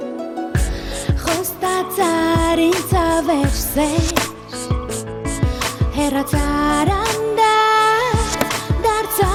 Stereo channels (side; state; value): both; identical; correlation 1.00